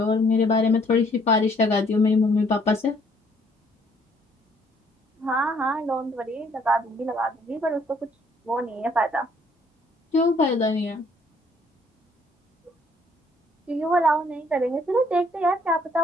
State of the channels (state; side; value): normal; both; correlation 0.64